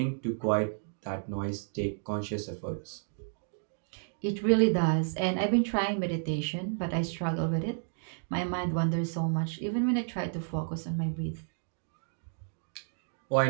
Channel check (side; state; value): left; silent; digital silence